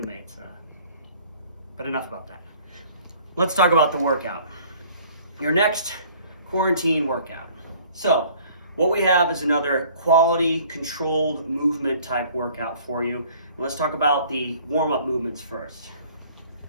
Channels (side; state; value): both; inverted; correlation -0.54